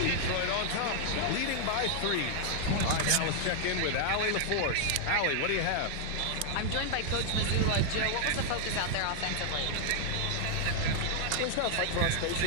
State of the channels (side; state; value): both; different; correlation 0.00